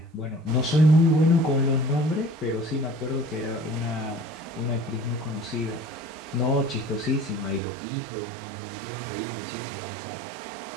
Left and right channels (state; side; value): drops out; left; at 7.6 s